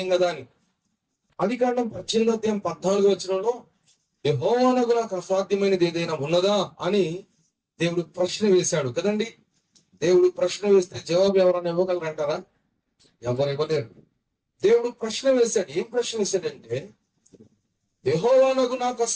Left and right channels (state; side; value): identical; both; correlation 1.00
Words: కదా అని. ఆదికాండం 18వ అధ్యాయం 14వ వచనంలో యెహోవానకు నాకు అసాధ్యమైనది ఏదైనా ఉన్నదా అని దేవుడు ప్రశ్న వేశాడు కదండి. దేవుడు ప్రశ్న వేస్తే జవాబు ఎవరైనా ఇవ్వగలరంటారా? ఎవరు ఇవ్వలేరు. దేవుడు ప్రశ్న వేశాడు. ఏం ప్రశ్న వేశాడంటే, యెహోవానకు నాకు